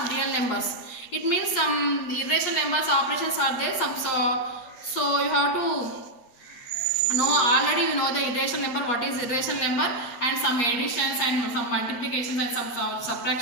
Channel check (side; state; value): right; late; 8.5 ms